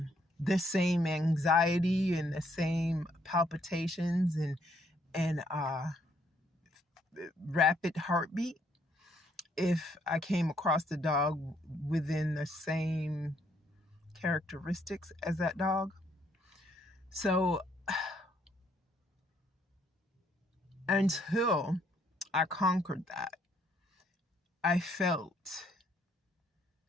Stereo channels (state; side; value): normal; both; correlation 0.69